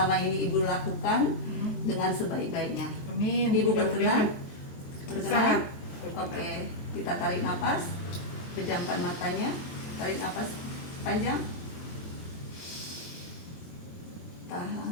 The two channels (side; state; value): right; late; 23 ms